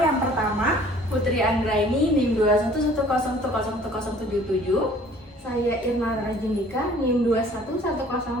Yang pertama, Putri Anggraini, NIM 21101101077. Saya Irma Rajindika, NIM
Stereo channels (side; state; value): both; normal; correlation 0.53